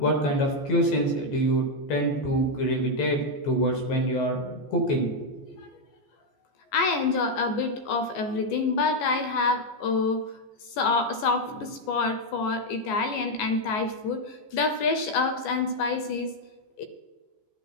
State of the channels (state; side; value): late; right; 14 ms